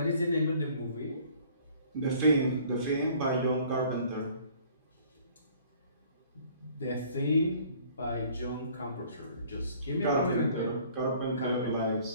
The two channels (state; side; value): inverted; both; correlation -0.55